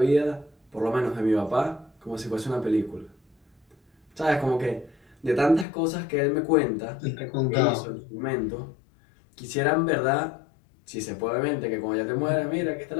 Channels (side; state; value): right; drops out; at 5.7 s